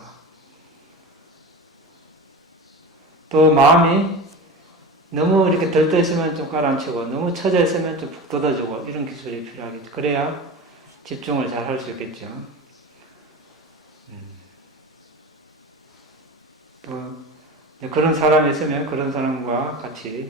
또 마음이 너무 이렇게 들떠 있으면 좀 가라앉히고 너무 처져 있으면 좀 푹 돋아주고 이런 기술이 필요하겠죠. 그래야 집중을 잘 할 수 있겠죠. 또 그런 사람이 있으면 그런 사람과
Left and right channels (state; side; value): normal; both; correlation 0.30